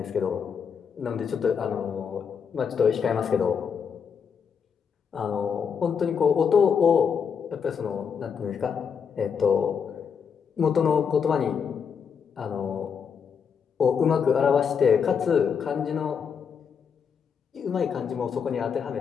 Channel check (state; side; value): quieter; right; 6.7 dB